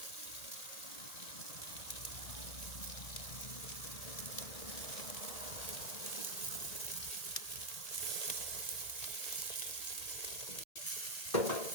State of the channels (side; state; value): right; late; 1.9 ms